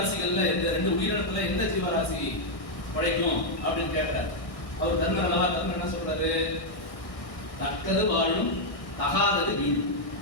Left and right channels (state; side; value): late; right; 1.6 ms